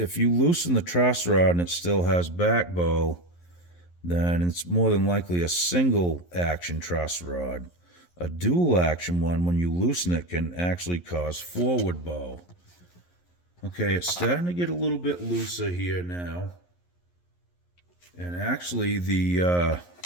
you loosen the truss rod and it still has back bow, then it's more than likely a single action truss rod. A dual action one, when you loosen it, can actually cause forward bow. Okay, it's starting to get a little bit looser here now. And actually the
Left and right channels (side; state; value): right; late; 11 ms